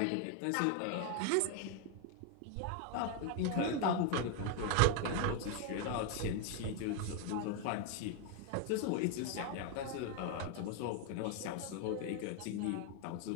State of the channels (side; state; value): both; different; correlation 0.01